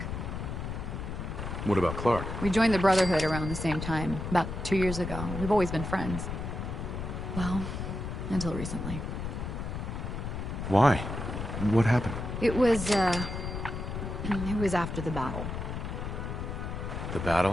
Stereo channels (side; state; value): left; noise; rumble, 5 dB below the sound